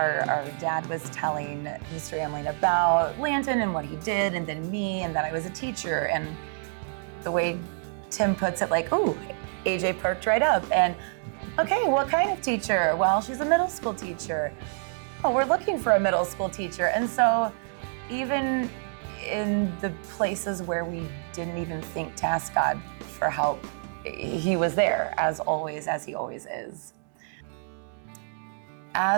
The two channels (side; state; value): left; silent; digital silence